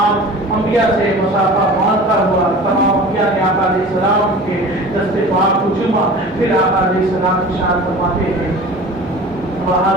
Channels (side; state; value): both; normal; correlation 0.39